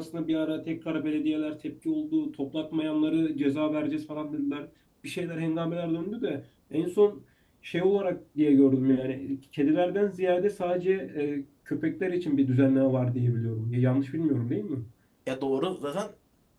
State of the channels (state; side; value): identical; both; correlation 1.00